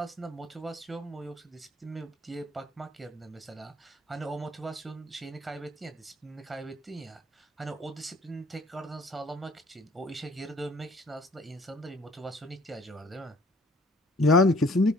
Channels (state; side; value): normal; both; correlation 0.56